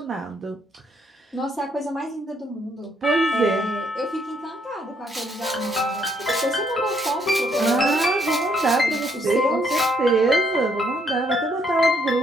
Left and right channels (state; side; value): normal; both; correlation 0.71